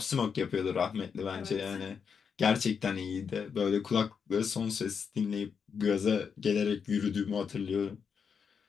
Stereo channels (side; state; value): right; quieter; 6.4 dB